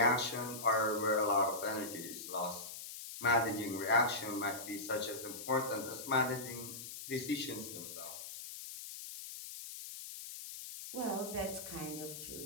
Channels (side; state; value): left; noise; hiss, 10 dB below the sound